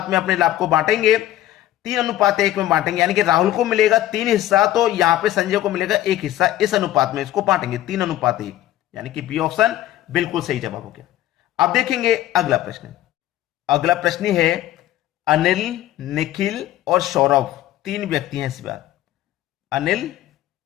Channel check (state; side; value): quieter; right; 13.9 dB